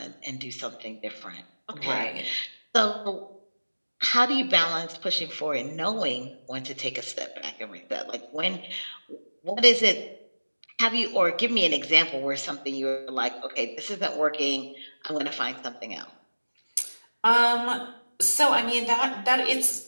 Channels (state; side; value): inverted; both; correlation -1.00